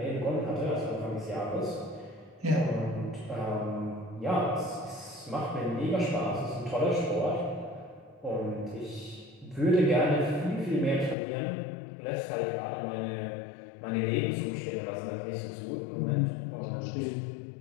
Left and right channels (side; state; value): right; drops out; at 11.2 s